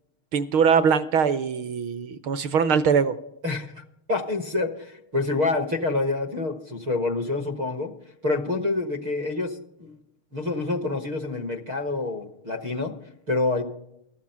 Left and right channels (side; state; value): left; late; 6.5 ms